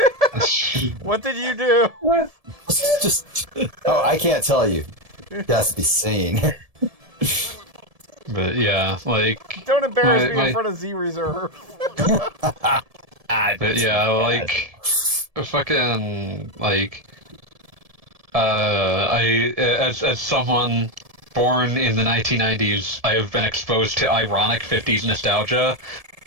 What did you do? Oh, I can't tell you. It has to be seen. But yeah, like... Don't embarrass me in front of Z Reserve. But yeah, like... Fucking, like... as someone born in the 1990s, I have been exposed to ironic 50s nostalgia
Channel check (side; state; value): left; late; 1.7 ms